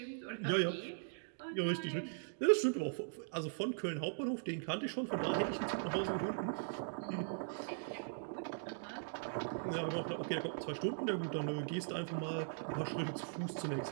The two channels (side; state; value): left; silent; digital silence